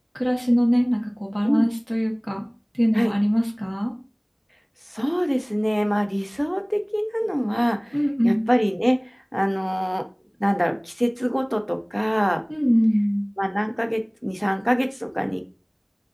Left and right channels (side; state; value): both; identical; correlation 1.00